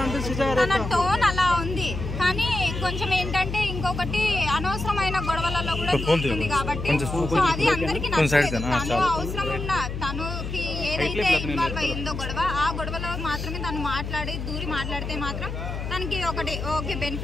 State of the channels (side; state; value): left; noise; hum, 5 dB below the sound